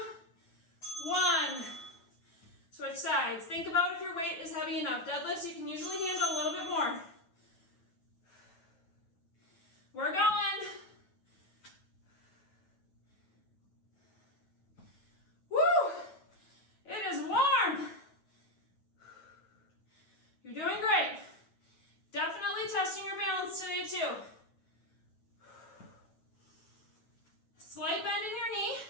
one. Switch sides. Think about if your weight is heavy enough. Deadlifts, you can usually handle a little bit more. We're going. Woo! It is warm. You're doing great. Definitely testing your balance today too. Slight bend in your knee.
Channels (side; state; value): right; late; 9.4 ms